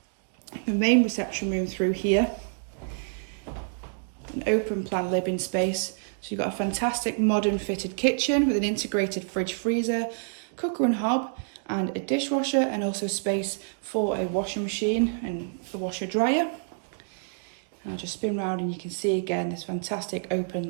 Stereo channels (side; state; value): left; silent; digital silence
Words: The main reception room through here, an open plan living space. So you've got a fantastic modern fitted kitchen with an integrated fridge freezer, cooker and hob, and a dishwasher, and also space for a washing machine and the washer dryer. And I'll just spin round and you can see again this fantastic